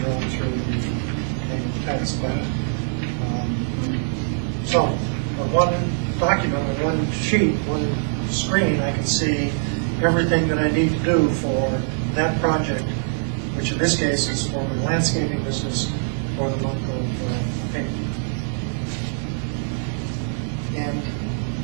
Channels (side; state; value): left; silent; digital silence